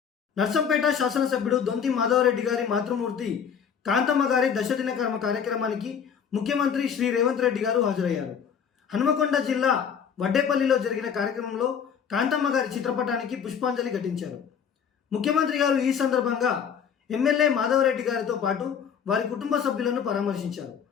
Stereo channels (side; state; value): right; quieter; 7.5 dB